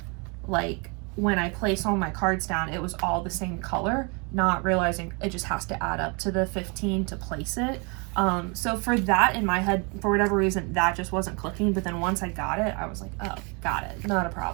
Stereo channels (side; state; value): left; quieter; 32.5 dB